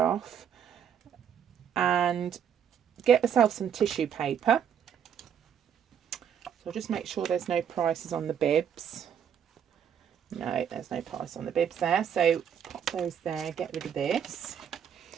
and get myself some tissue paper. So just make sure there's no prices on the bibs. No, there's no price on the bibs there, so pop those there, get rid of this.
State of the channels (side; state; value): left; quieter; 8.4 dB